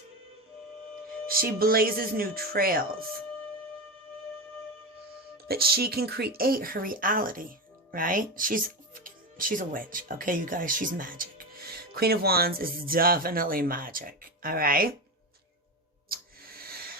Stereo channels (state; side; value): normal; both; correlation 0.18